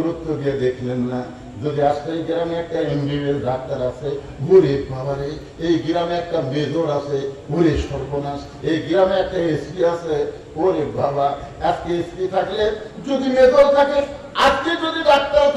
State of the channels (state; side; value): identical; both; correlation 1.00